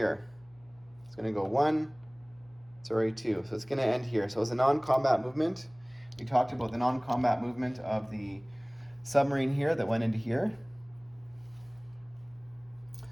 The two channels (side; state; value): left; noise; hum, 28 dB below the sound